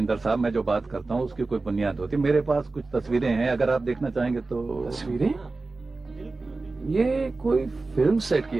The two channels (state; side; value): quieter; left; 3.5 dB